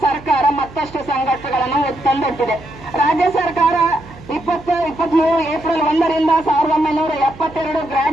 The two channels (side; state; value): right; noise; hum, 19 dB below the sound